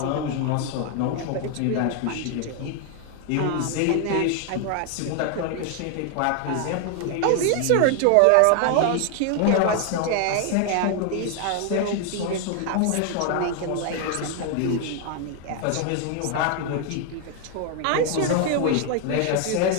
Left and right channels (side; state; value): both; different; correlation 0.00